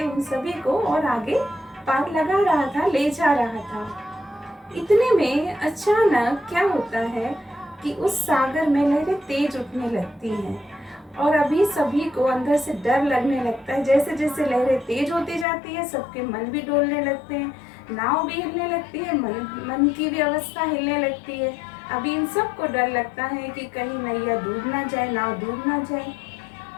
उन सभी को और आगे पार लगा रहा था, ले जा रहा था। इतने में अचानक क्या होता है कि उस सागर में लहरें तेज उठने लगती हैं और अभी सभी को अंदर से डर लगने लगता है। जैसे जैसे लहरें तेज होती जाती है, सबके मन भी डोलने लगते हैं, नाव भी हिलने लगती है, मन की भी अवस्था हिलने लगती है। अभी इन सबको डर लगता है कि कहीं नैया डूब ना जाए, नाव डूब ना जाए।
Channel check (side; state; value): right; drops out; at 15.5 s